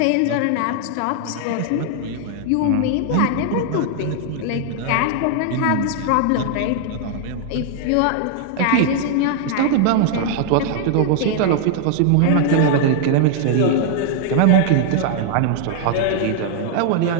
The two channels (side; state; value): both; different; correlation 0.00